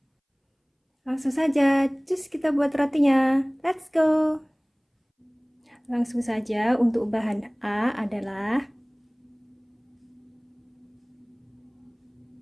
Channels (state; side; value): identical; both; correlation 1.00